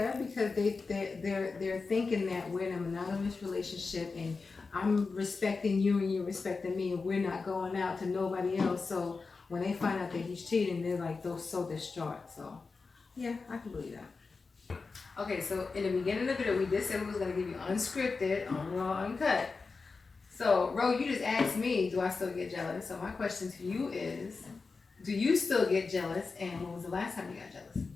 because they're thinking that we're in a monogamous relationship and I'm respecting you and you're respecting me, and we're not going out to nobody else. So when they find out that he's cheating, they're like, they're so distraught. So yeah, I can believe that. Okay, so in the beginning of the video, we did say we was gonna give you unscripted, raw, uncut. So Ro, you just asked me, do I still get jealous? So my question to you is, do you still get jealous, and when was the last time you got jealous?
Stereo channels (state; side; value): quieter; right; 4.4 dB